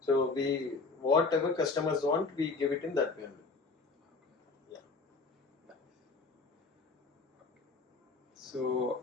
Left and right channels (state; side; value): quieter; right; 4.1 dB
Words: So we, whatever customers want, we give it in that way only. Yeah.